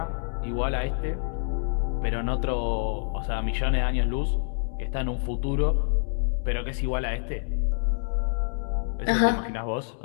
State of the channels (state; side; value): silent; right; digital silence